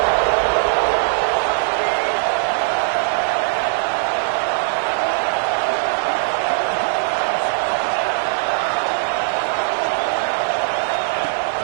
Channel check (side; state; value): left; silent; 66 dB below the other